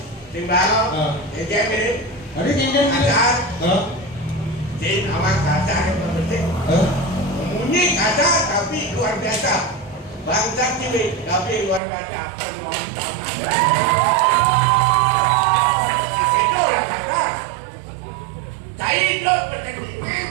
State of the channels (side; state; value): left; drops out; at 11.8 s